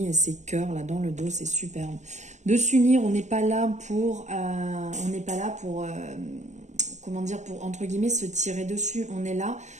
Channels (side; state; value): left; late; 0.34 ms